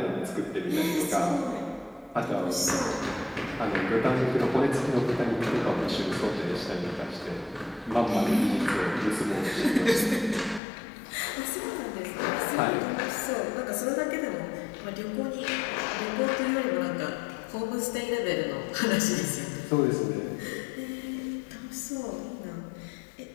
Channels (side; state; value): right; drops out; at 10.6 s